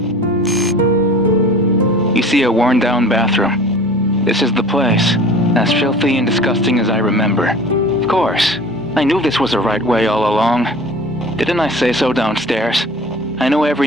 you see a worn-down bathroom. This is the place, as filthy and disgusting as I remember. Of course, I knew this was the right way all along. Didn't I say so downstairs? I know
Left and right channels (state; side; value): normal; both; correlation 0.42